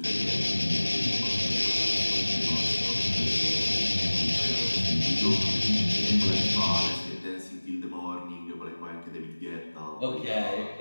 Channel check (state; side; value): inverted; both; correlation -1.00